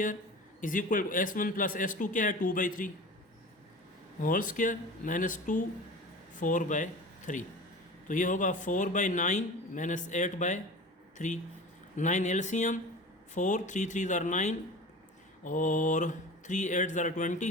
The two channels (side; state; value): both; normal; correlation 0.35